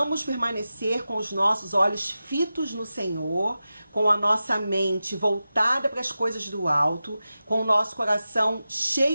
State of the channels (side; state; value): both; inverted; correlation -0.93